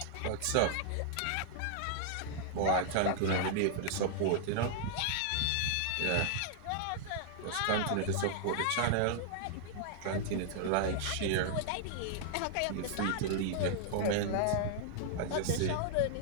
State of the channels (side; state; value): both; different; correlation -0.01